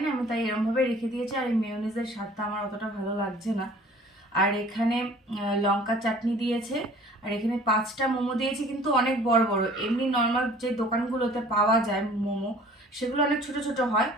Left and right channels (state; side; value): normal; both; correlation 0.50